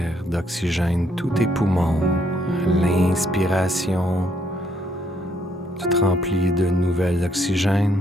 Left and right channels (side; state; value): both; normal; correlation 0.70